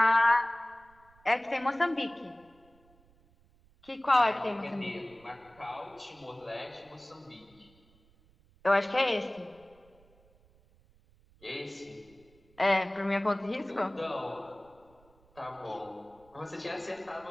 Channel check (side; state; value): right; noise; rumble, 30 dB below the sound